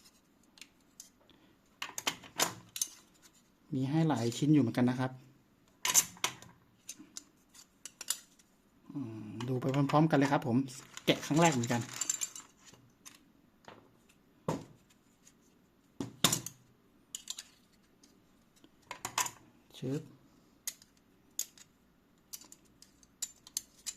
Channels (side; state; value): both; identical; correlation 1.00